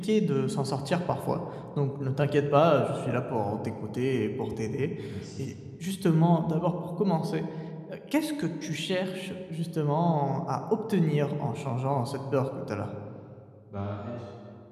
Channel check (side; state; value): both; identical; correlation 1.00